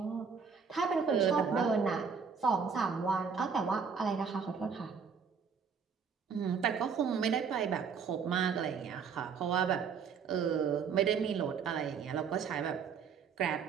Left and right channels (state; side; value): quieter; left; 6.1 dB